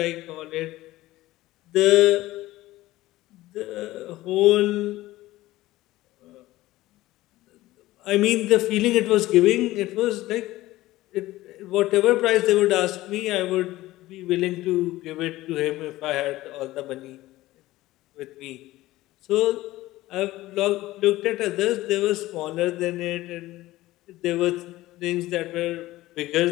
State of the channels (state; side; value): quieter; right; 17.1 dB